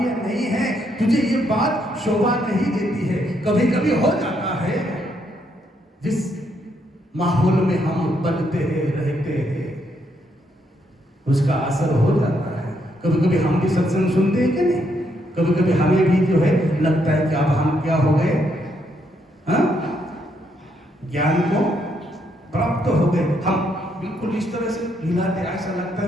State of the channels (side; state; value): both; normal; correlation 0.75